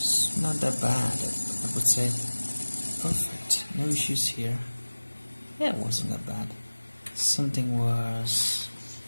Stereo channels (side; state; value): both; inverted; correlation -1.00